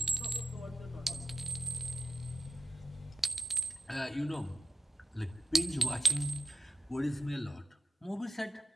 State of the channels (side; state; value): both; normal; correlation 0.86